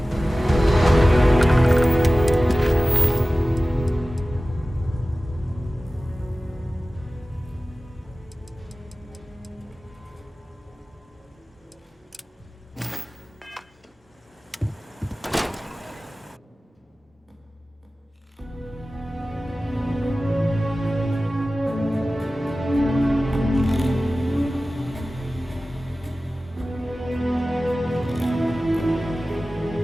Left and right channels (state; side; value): normal; both; correlation 0.96